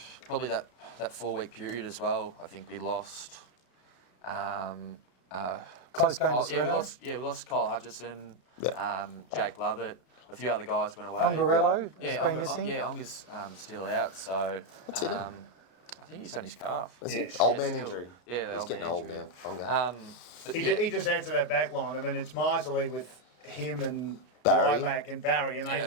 probably that 4-week period as well. I think we lost. Close game to We Sereno. we lost Kyle Hutchison, Yeah. Jake Lovett, a few other guys went away. Pongarello has Yeah, been missing. Yeah, Onga's still out, so What's he done? I think he's done his calf. Is Yeah. it old Yeah, man still. injury? Yeah, the He's old getting man old injury. now. Ponga. But He, yeah, he just adds to that back line. I mean, it's miserly with him and Barry. Lilac and Barry, and they Yeah.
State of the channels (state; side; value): late; right; 33 ms